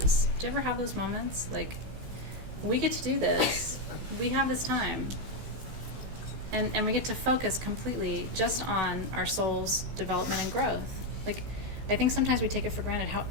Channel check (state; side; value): late; left; 16 ms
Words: is. Do you ever have those moments? Like, we get to do this. We have this time. And we get to focus completely just on our soul's development and growth. Like, I think sometimes we take it for granted how